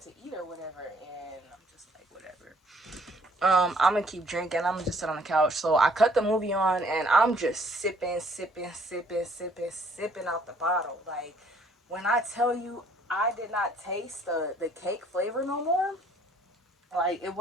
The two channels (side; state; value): both; normal; correlation 0.62